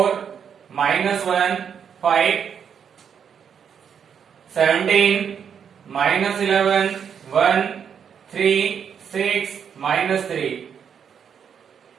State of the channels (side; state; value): left; quieter; 7.6 dB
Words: minus 1 5, 17 minus 11 1, 3 6 minus 3.